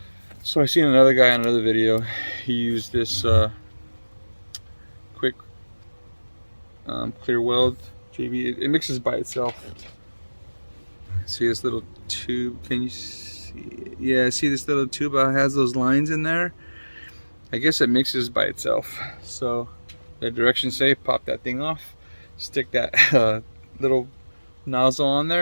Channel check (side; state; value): both; inverted; correlation -1.00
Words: So I seen another guy on another video. He used this quick clear weld JB. It mixes by itself. See this little tube? Can you see it? Yeah, see this little tube? It has those lines in there. I guess it mixes by itself. So the directions say pop that thing off, stick that little nozzle on